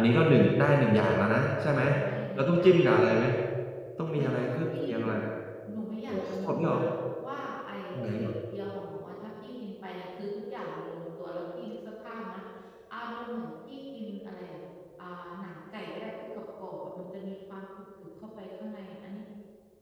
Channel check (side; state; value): both; identical; correlation 1.00